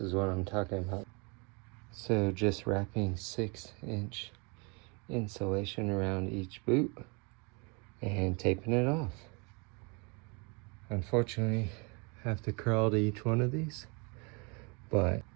what I'm talking about. So just wrapping 6-inch insulation around each boot and taping it off. Unfortunately, I have to crawl to each one of these, but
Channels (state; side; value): quieter; left; 31.4 dB